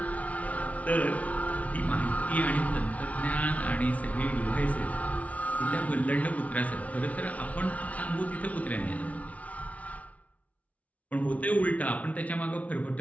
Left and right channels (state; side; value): late; right; 0.068 ms